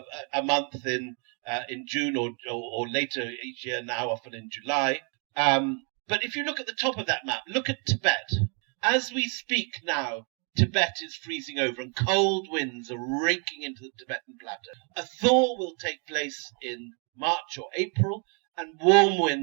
a month in June or later each year, now often in July. But if you look at the top of that map, look at Tibet. As we speak now, Tibet is freezing over and cold winds are raking into the Tibetan plateau. A thaw will take place in March or April, and warm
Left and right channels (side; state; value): left; quieter; 38.2 dB